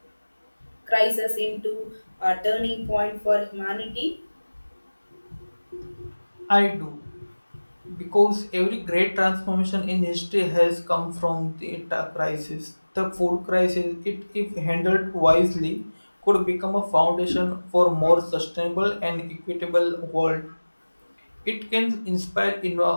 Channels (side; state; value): both; inverted; correlation -1.00